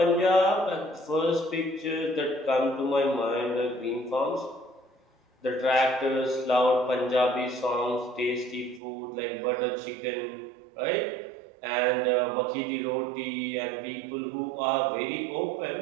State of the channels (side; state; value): left; drops out; at 8.8 s